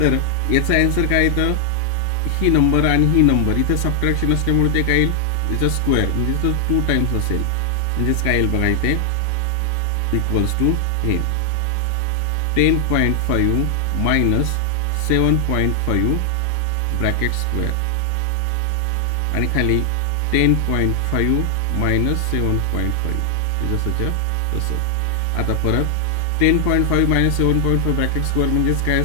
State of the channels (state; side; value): different; both; correlation 0.00